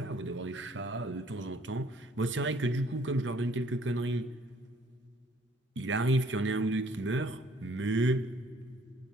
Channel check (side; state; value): both; normal; correlation 0.59